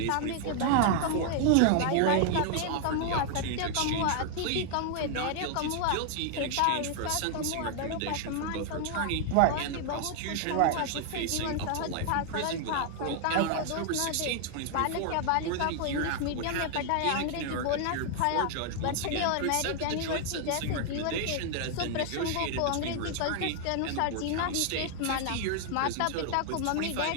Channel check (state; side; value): different; both; correlation 0.00